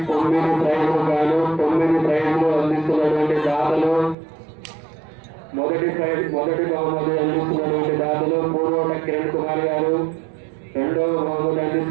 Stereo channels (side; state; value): left; drops out; at 4.2 s